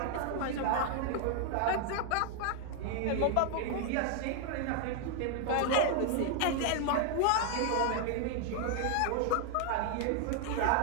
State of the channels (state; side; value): different; both; correlation 0.00